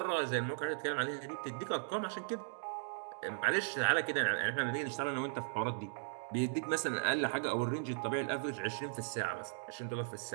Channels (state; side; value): silent; left; digital silence